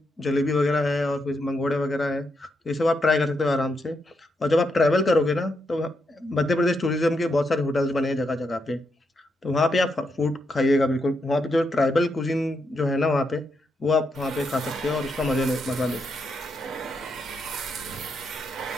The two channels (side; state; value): both; normal; correlation 0.81